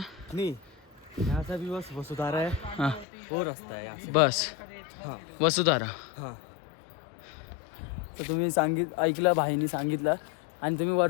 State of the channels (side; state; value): right; drops out; at 3.1 s